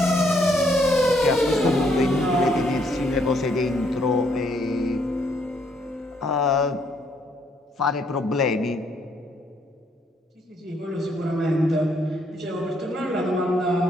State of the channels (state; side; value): normal; both; correlation 0.70